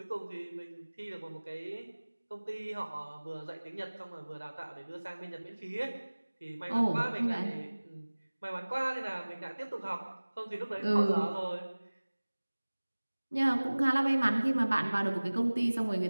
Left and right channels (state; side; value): inverted; both; correlation -1.00